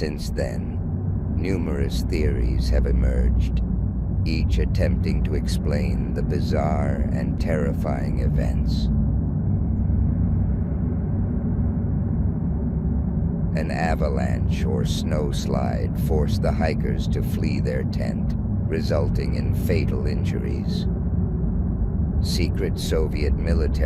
then, numerous theories have emerged, each attempting to explain the bizarre and terrifying events. An avalanche or snowslide forced the hikers to flee their tent, resulting in fatal injuries. Secret Soviet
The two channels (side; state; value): both; identical; correlation 1.00